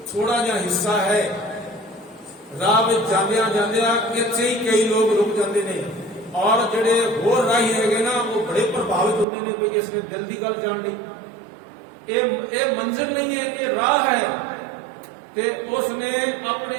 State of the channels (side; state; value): left; drops out; at 9.2 s